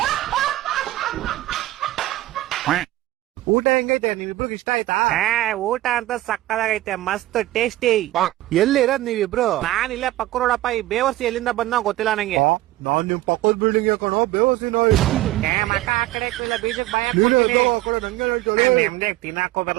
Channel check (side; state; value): left; quieter; 16.4 dB